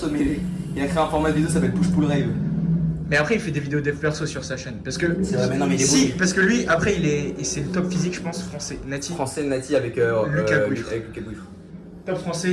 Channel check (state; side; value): identical; both; correlation 1.00